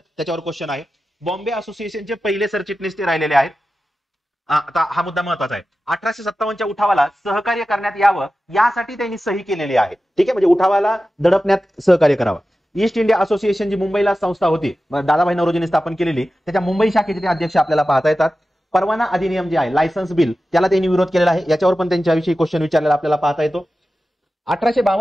त्याच्यावर क्वेश्चन आहे. बॉम्बे असोसिएशनचे पहिले सरचिटणीस ते राहिलेले आहेत. आता हा मुद्दा महत्वाचा आहे. 1857च्या उठावाला सहकार्य करण्यात यावं यासाठी त्यांनी सही केलेली आहे. ठीक आहे, म्हणजे उठावाला दडपण्यात सहकार्य करावं. ईस्ट इंडिया असोसिएशन जी मुंबईला संस्था होती, दादाभाई नौरोजींनी स्थापन केलेली, त्याच्या मुंबई शाखेचे ते अध्यक्ष आपल्याला पाहता येतात. परवाना अधिनियम जे आहे, लायसन्स बिल, त्याला त्यांनी विरोध केलेला आहे. याच्यावर पण त्यांच्याविषयी क्वेश्चन विचारलेला आपल्याला पाहता येतो.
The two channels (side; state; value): both; normal; correlation 0.94